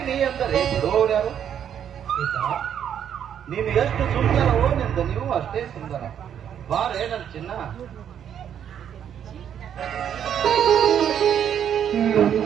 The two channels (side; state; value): left; quieter; 9.1 dB